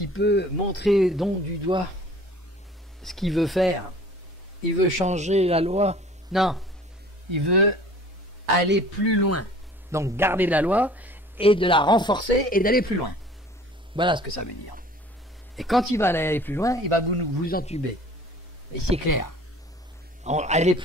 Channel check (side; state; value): both; normal; correlation 0.49